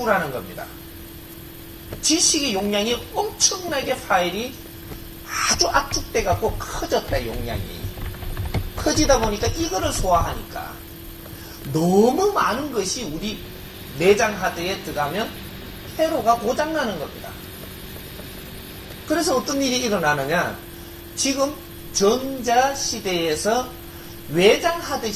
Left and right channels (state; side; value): identical; both; correlation 1.00